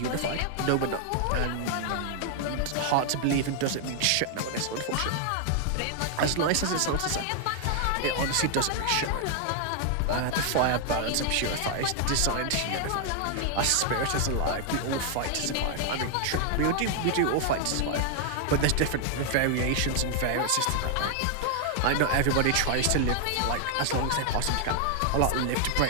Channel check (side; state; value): both; different; correlation 0.00